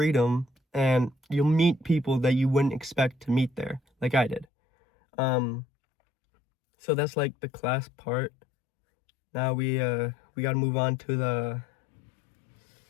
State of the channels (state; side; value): drops out; right; at 4.5 s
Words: and you'll meet people that you wouldn't expect to meet there, like I did. So that's like the class part. Now we gotta move on to the